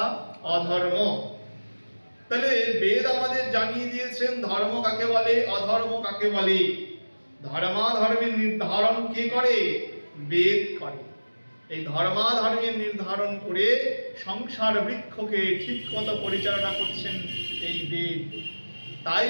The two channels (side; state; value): both; inverted; correlation -1.00